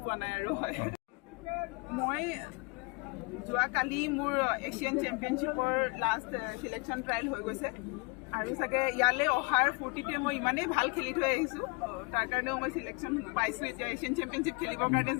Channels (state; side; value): quieter; right; 29.7 dB